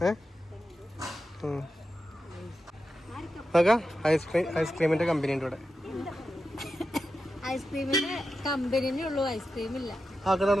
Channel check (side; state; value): both; normal; correlation 0.90